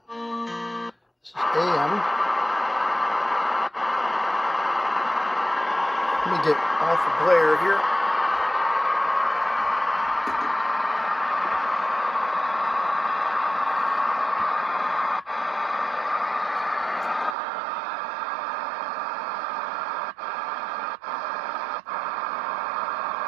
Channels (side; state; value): left; drops out; at 17.4 s